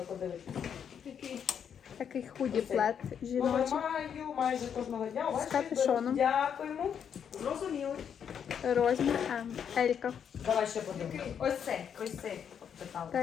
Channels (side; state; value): right; quieter; 8.0 dB